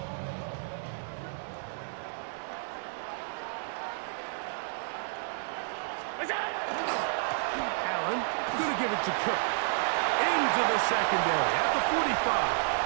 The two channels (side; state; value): left; silent; 57 dB below the other